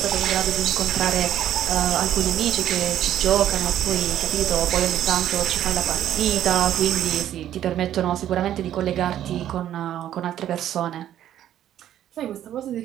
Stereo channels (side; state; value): left; quieter; 11.4 dB